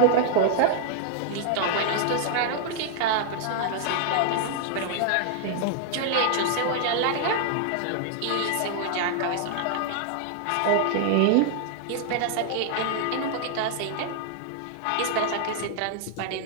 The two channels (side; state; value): both; different; correlation 0.00